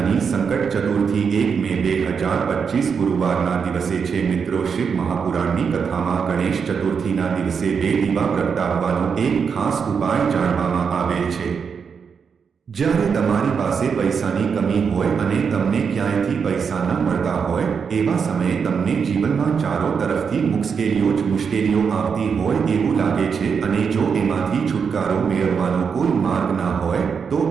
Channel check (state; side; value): quieter; left; 6.2 dB